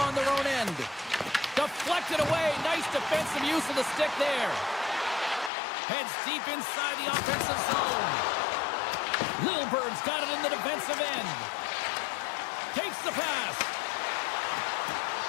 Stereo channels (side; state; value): right; drops out; at 5.5 s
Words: on their own end. Deflected away. Nice defensive use of the stick there. Heads deep inside the offensive zone. Lilburn's got it in the defensive end. Takes the pass.